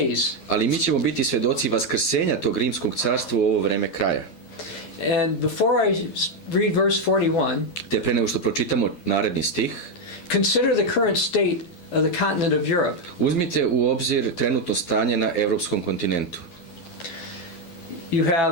Ali mi ćemo biti svedoci vaskrsenja tog rimskog carstva u ovo vreme kraja. And before I read verse 41, te pre nego što pročitamo naredni stih, consider the current state of the continent of Europe. Uzmite u obzir trenutno stanje na evropskom kontinentu. You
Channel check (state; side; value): late; right; 11 ms